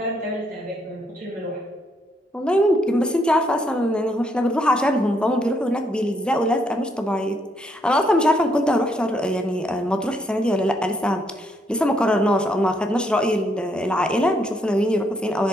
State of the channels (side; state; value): both; normal; correlation 0.73